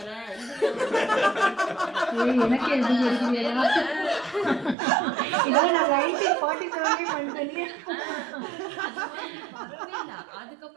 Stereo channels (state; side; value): drops out; left; at 4.8 s